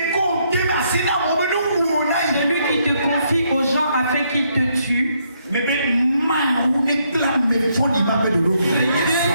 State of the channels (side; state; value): both; inverted; correlation -0.74